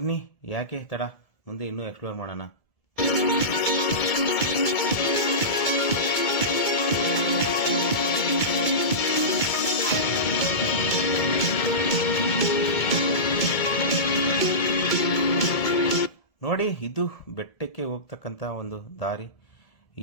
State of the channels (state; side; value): late; right; 1.7 ms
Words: ಯಾಕೆ ತಡ, ಮುಂದೆ ಇನ್ನೂ ಎಕ್ಸ್ಪ್ಲೋರ್ ಮಾಡೋಣ. ನೋಡಿ, ಇದು ಬೆಟ್ಟಕ್ಕೆ ಹೋಗ್ತಕ್ಕಂಥ ಒಂದು ದಾರಿ.